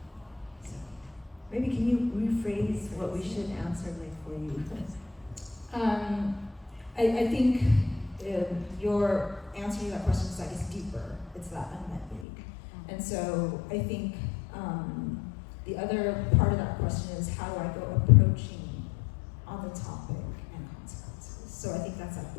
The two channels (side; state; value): right; drops out; at 12.2 s